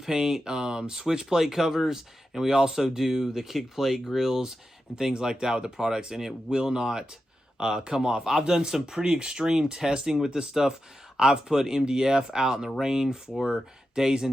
switch plate covers, and we also do the kick plate grills and things like that with the products, and it will not come off. I've done some pretty extreme testing with this stuff. I've put MDF out in the rain for days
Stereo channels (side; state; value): both; normal; correlation 0.90